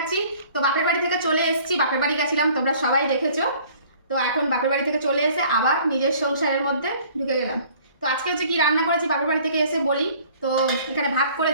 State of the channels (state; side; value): inverted; both; correlation -0.53